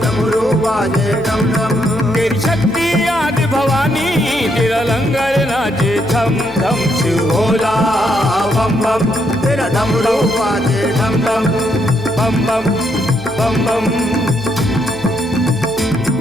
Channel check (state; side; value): noise; left; hum, 19 dB below the sound